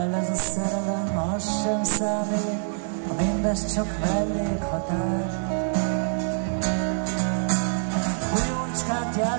ez a szerelem, az sem számít, ha mindez csak mellékhatár. Újócskát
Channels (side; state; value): left; silent; digital silence